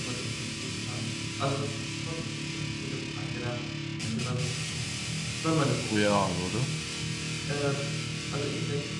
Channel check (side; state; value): both; identical; correlation 1.00